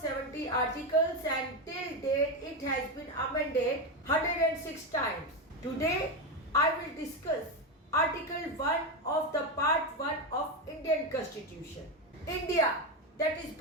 articles and till date it has been amended 106 times. Today I will discuss Article 1 of the Part 1 of Indian Constitution. India, that is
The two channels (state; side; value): normal; both; correlation 0.12